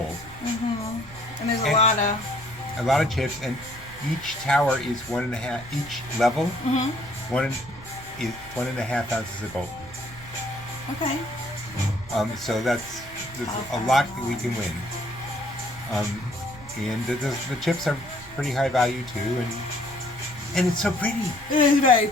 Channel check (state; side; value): noise; right; rumble, 18 dB below the sound